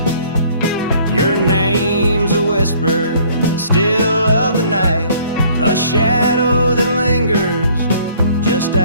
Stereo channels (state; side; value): inverted; both; correlation -0.58